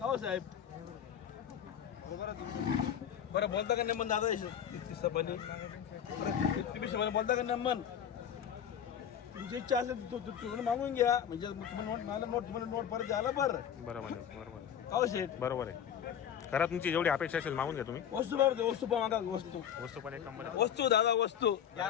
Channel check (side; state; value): right; quieter; 9.1 dB